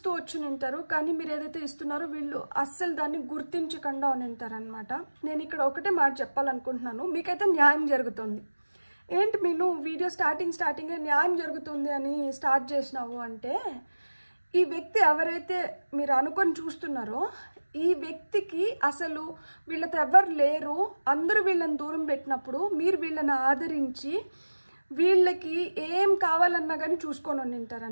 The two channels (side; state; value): both; inverted; correlation -1.00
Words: వచ్చి ఉంటారు, కానీ మీరు ఏదైతే ఇస్తున్నారో వీళ్ళు అస్సలు దాన్ని గుర్తించకుండా ఉంటారనమాట। నేను ఇక్కడ ఒకటే మాట చెప్పాలనుకుంటున్నాను, మీకైతే న్యాయం జరుగుతుంది। ఏంటి మీరు వీడియో స్టార్టింగే న్యాయం జరుగుతుంది అని స్టార్ట్ చేసినావు అంటే, ఈ వ్యక్తి ఎవరైతే మీరు అనుకొని చూస్తున్నారో ఈ వ్యక్తికి అసలు వీళ్ళతో ఎవరు లేరు, అందరూ వీళ్ళని దూరం పెట్టినప్పుడు మీరు వీళ్ళని ఆదరించి వీళ్ళకి ఏం కావాలన్నా కానీ చూసుకొని